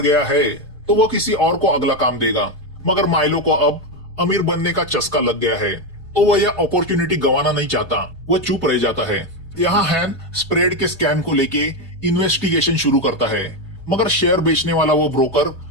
गया है तो वो किसी और को अगला काम देगा, मगर माइलो को अब अमीर बनने का चस्का लग गया है, तो वह यह अपॉर्चुनिटी गंवाना नहीं चाहता। वह चुप रह जाता है। यहाँ हैन स्प्रेड के स्कैम को लेके इन्वेस्टिगेशन शुरू करता है, मगर शेयर बेचने वाला वो ब्रोकर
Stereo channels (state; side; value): normal; both; correlation 0.09